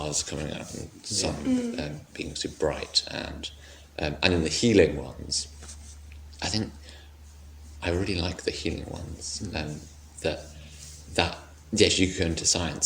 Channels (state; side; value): identical; both; correlation 1.00